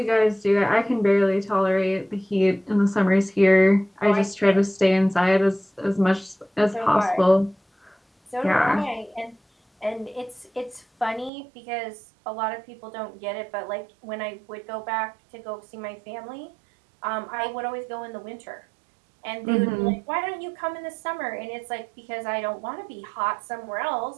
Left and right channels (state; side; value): drops out; left; at 11.3 s